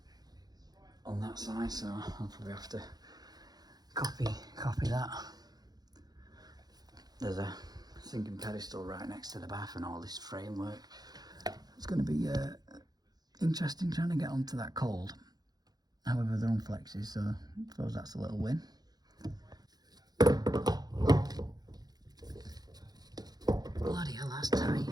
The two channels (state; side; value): late; left; 0.19 ms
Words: on that side, so I'll probably have to copy that. There's a sinking pedestal right next to the bath and all this framework. It's going to be interesting trying to get onto that cold. However, they're on flexes, so I suppose that's a little win. Bloody hell, that's tight.